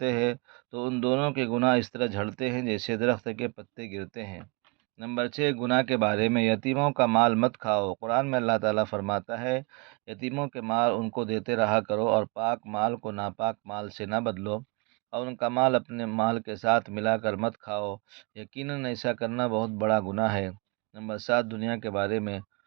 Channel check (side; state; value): left; quieter; 30.2 dB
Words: ہیں تو ان دونوں کے گناہ اس طرح جھڑتے ہیں جیسے درخت کے پتے گرتے ہیں۔ نمبر 6 گناہ کے بارے میں، یتیموں کا مال مت کھاؤ۔ قرآن میں اللہ تعالیٰ فرماتا ہے، یتیموں کے مال ان کو دیتے رہا کرو اور پاک مال کو ناپاک مال سے نہ بدلو، اور ان کا مال اپنے مال کے ساتھ ملا کر مت کھاؤ، یقیناً ایسا کرنا بہت بڑا گناہ ہے۔ نمبر 7 دنیا کے بارے میں،